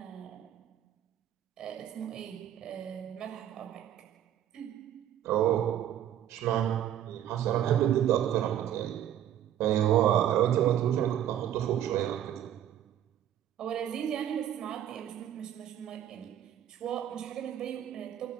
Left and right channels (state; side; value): quieter; left; 10.9 dB